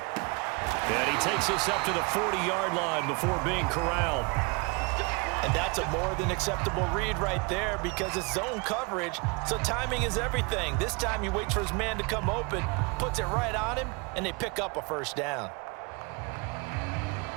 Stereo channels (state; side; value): quieter; left; 29.6 dB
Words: he takes us up to the 40-yard line before being corralled. And that's a more than acceptable read right there because it's zone coverage, so timing is everything. This time he waits for his man to come open, puts it right on him, and they pick up a first down.